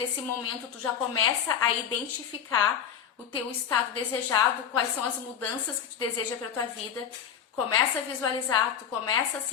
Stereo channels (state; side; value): quieter; right; 8.3 dB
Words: momento tu já começa a identificar o teu estado desejado, quais são as mudanças que tu deseja para tua vida. Começa a visualizar, tu começa a